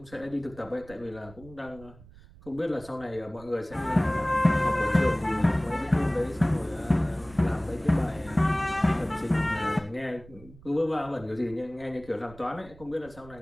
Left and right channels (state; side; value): noise; right; rumble, 21 dB below the sound